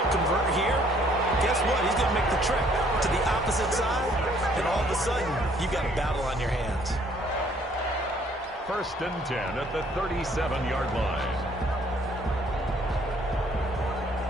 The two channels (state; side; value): normal; both; correlation 0.62